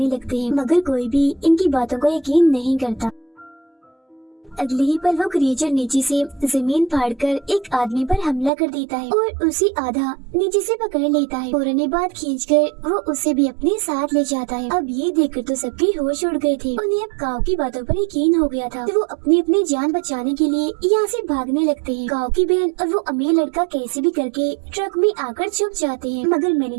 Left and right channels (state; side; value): drops out; left; at 8.5 s